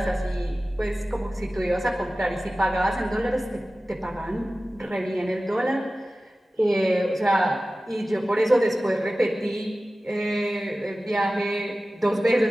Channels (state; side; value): normal; both; correlation 0.96